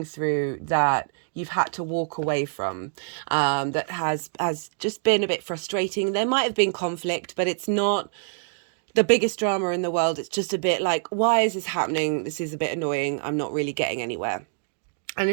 through that you've had to walk away from, that has just been a bit frustrating. There might have been conflict, but it's not the biggest drama in the world. It's just a bit like, why is this happening? This is a bit annoying. I'm not really getting anywhere. And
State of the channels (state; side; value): silent; left; digital silence